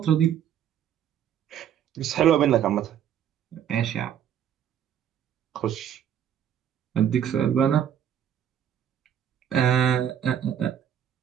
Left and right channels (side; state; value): left; quieter; 9.5 dB